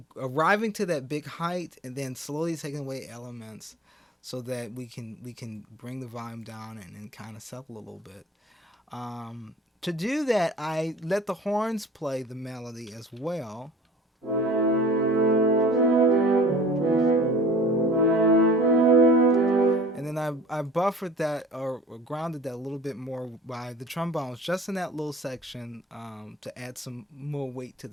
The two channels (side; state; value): both; normal; correlation 0.46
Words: arriving to that big height and then slowly taking away elements so that we can bring the volume down and kind of settle a little bit. To do that, I let the horns play the melody as well. And then I buffered that or grounded that a little bit more by the trombones just in that little section to add some more weight to